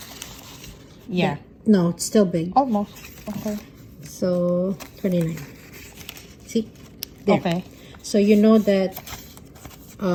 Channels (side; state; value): both; identical; correlation 1.00